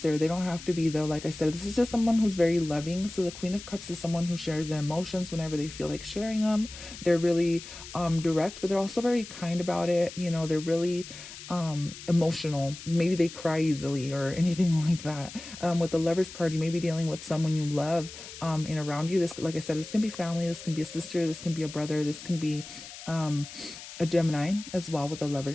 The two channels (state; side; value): noise; left; hiss, 14 dB below the sound